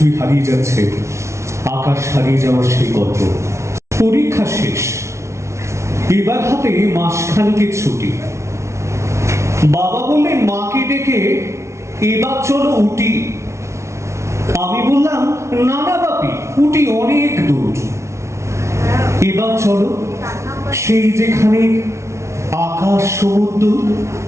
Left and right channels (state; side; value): late; left; 0.13 ms